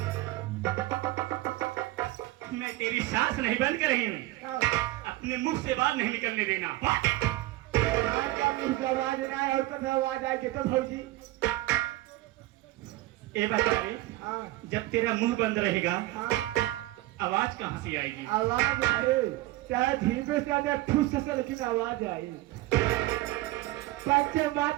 मैं तेरी सांस नहीं बंद कर रही हूँ अपने मुख से बात नहीं निकलने देना। मुंह से आवाज ना आए और कभी आवाज आए तो भौजी ए बता रे जब तेरा मुंह बंद रहेगा आवाज कहाँ से आएगी। आवाज आए चाहे धीरे से आए ठूस से लेकिन आवाज आई पंच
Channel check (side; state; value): left; quieter; 17.8 dB